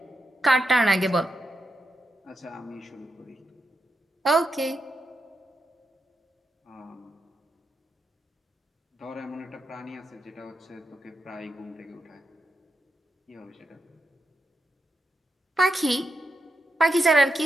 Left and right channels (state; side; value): normal; both; correlation 0.85